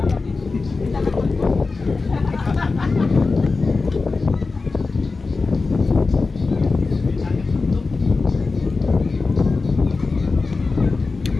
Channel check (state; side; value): quieter; right; 4.0 dB